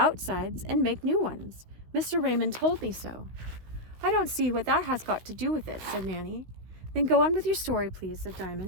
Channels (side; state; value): left; late; 16 ms